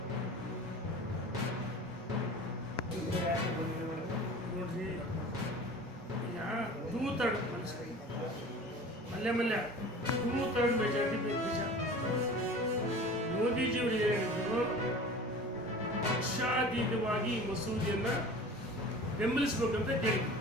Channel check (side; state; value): both; normal; correlation 0.40